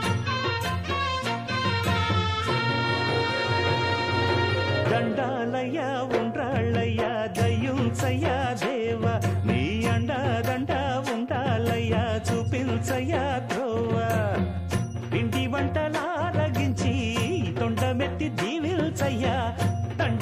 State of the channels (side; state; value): both; identical; correlation 1.00